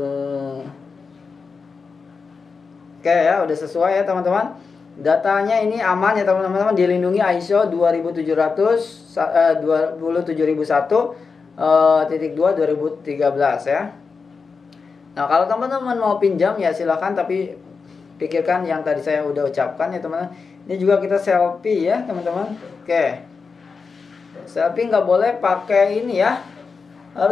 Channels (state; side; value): quieter; right; 5.0 dB